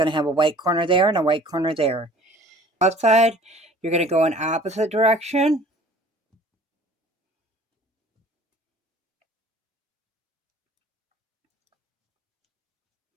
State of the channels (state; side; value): normal; both; correlation 0.49